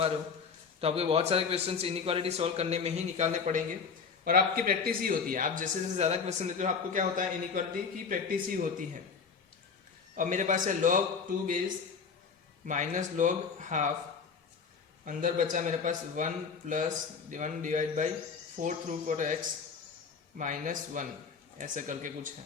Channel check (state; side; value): quieter; right; 5.7 dB